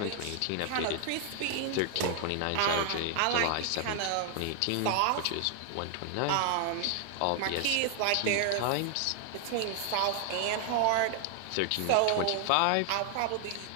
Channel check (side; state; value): both; different; correlation 0.00